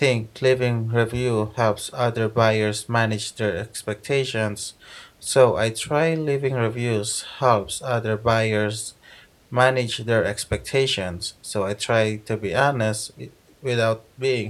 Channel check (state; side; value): identical; both; correlation 1.00